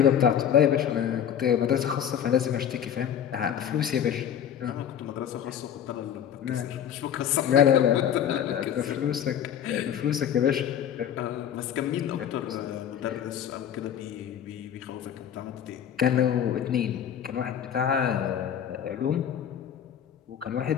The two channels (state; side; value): quieter; right; 9.3 dB